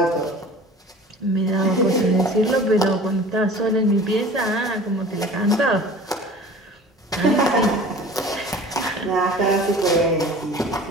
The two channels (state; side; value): normal; both; correlation 0.43